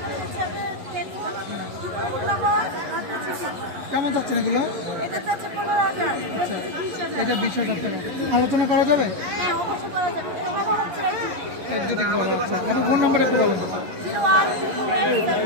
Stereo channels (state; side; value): late; left; 11 ms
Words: কেমন চাচ্ছেন এগুলো? এটা 20,000 টাকা। আলোচনা করা যাবে? ফোন নাম্বার একটু বলুন।